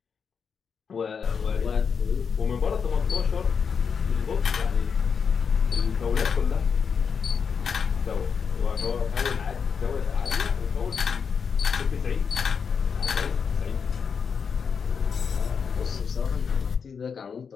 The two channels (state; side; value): quieter; right; 6.2 dB